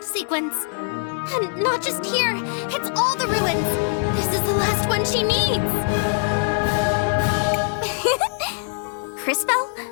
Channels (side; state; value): right; silent; 58 dB below the other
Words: sequence. And not just here, it's all the ruins. This is the last one she needs. Crisbell?